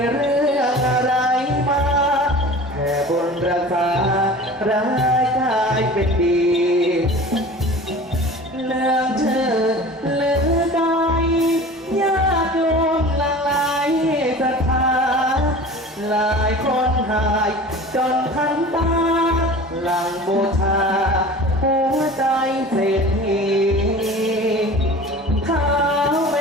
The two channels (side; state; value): both; normal; correlation 0.39